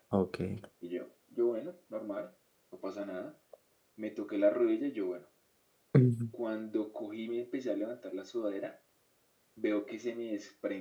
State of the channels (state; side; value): identical; both; correlation 1.00